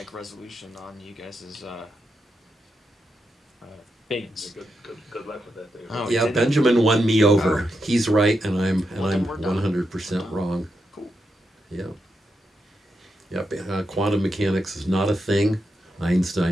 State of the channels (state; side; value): normal; both; correlation 0.85